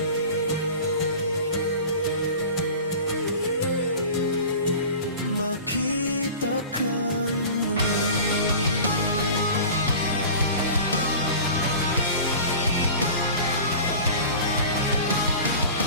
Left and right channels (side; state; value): both; inverted; correlation -0.37